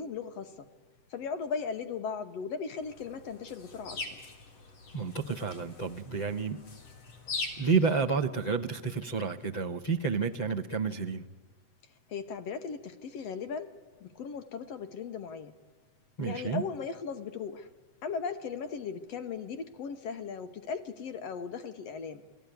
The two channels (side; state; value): right; late; 7.9 ms